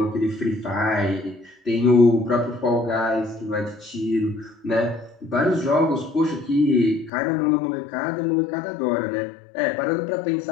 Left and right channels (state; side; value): drops out; right; at 7.1 s